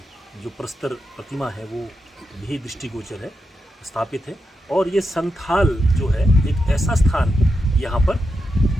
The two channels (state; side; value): normal; both; correlation 0.86